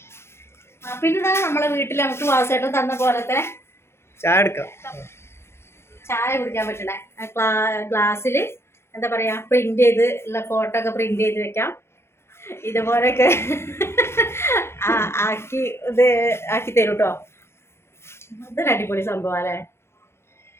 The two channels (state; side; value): late; right; 0.12 ms